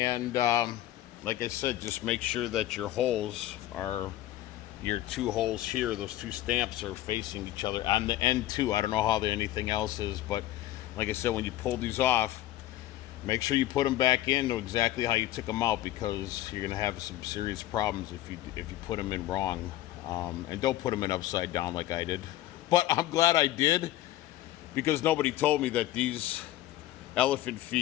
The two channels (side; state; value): right; quieter; 14.5 dB